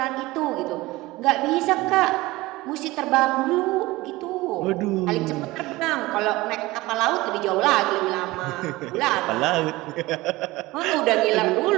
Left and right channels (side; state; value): left; quieter; 19.8 dB